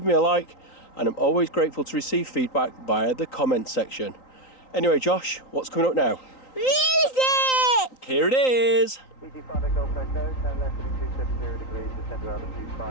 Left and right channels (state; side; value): late; right; 3.9 ms